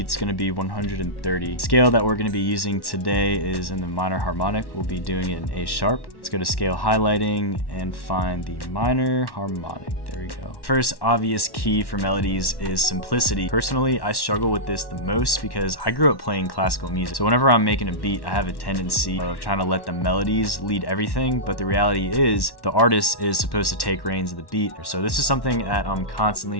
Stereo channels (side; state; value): right; late; 1.1 ms